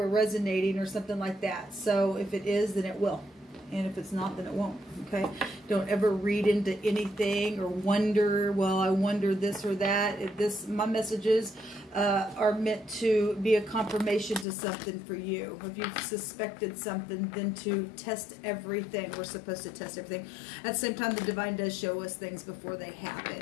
resonating or something like that. So if it is, then it will. And if it's not, then it won't. Okay? Don't ever read into anything or wonder, well, I wonder this or that. My messages are meant to be a confirmation to something for you. If you've suspected something, then to test everything. We're supposed to test everything. At the same time, the divine does show us things before they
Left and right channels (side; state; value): right; drops out; at 14.5 s